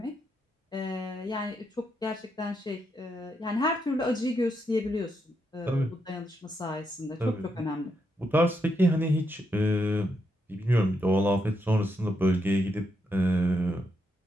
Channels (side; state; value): both; normal; correlation 0.80